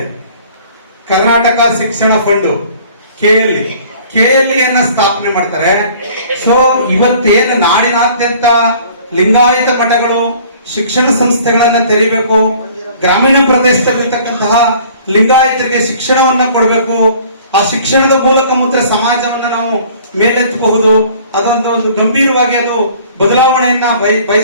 ಕರ್ನಾಟಕ ಶಿಕ್ಷಣ ಫಂಡ್ KLE ಅನ್ನ ಸ್ಥಾಪನೆ ಮಾಡ್ತಾರೆ. ಸೊ ಇವತ್ತೇನು ನಾಡಿನಾದ್ಯಂತ ಲಿಂಗಾಯತ ಮಠಗಳು ಶಿಕ್ಷಣ ಸಂಸ್ಥೆಗಳನ್ನ ತೆರೀಬೇಕು, ಗ್ರಾಮೀಣ ಪ್ರದೇಶದಲ್ಲಿರ್ತಕ್ಕಂತಹ ಲಿಂಗಾಯತರಿಗೆ ಶಿಕ್ಷಣವನ್ನ ಕೊಡಬೇಕು, ಆ ಶಿಕ್ಷಣದ ಮೂಲಕ ಮಾತ್ರ ಸಮಾಜವನ್ನ ನಾವು ಮೇಲೆತ್ತಬಹುದು, ಒಂದು ಗಂಭೀರವಾಗಿ ಅದು ಬದಲಾವಣೆಯನ್ನ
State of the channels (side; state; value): both; inverted; correlation -0.52